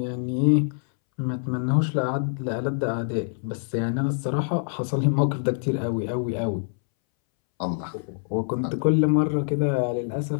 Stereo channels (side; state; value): right; silent; 62 dB below the other